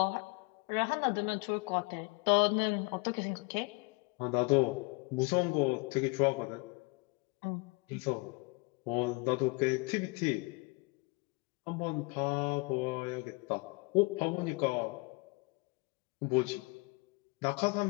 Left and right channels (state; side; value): quieter; right; 29.2 dB